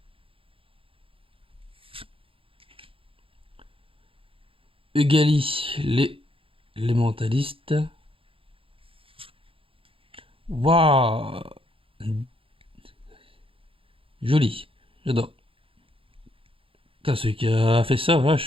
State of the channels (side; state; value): left; late; 0.26 ms